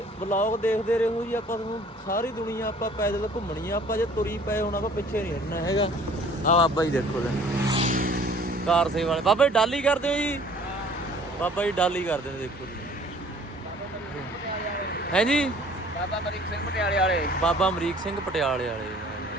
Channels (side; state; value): both; normal; correlation 0.53